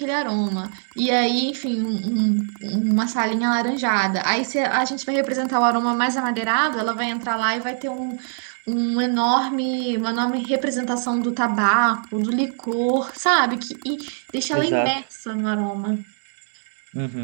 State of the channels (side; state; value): left; silent; digital silence